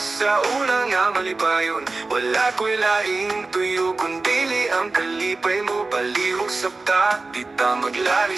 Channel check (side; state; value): left; quieter; 3.5 dB